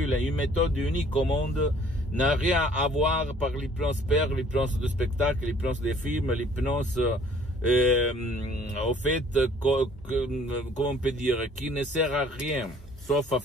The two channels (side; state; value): both; normal; correlation 0.56